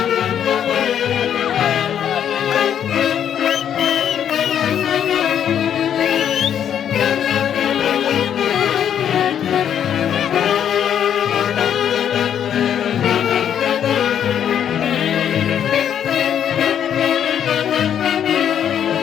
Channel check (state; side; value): quieter; right; 9.2 dB